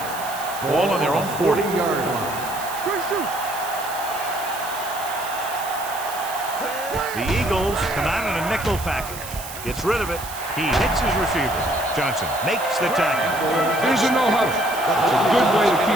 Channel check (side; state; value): right; noise; hiss, 12 dB below the sound